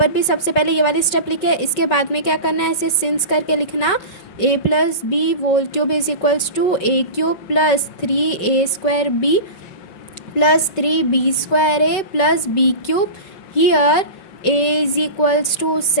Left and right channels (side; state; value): right; late; 5.2 ms